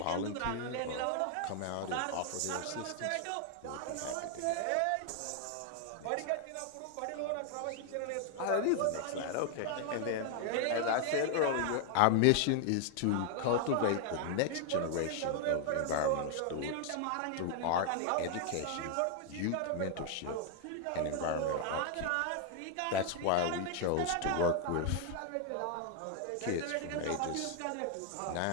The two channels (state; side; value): different; both; correlation 0.00